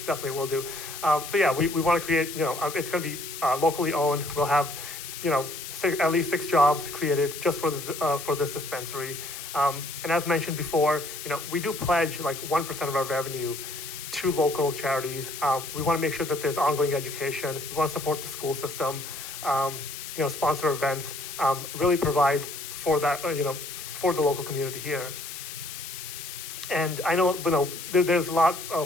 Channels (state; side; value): noise; left; hiss, 9 dB below the sound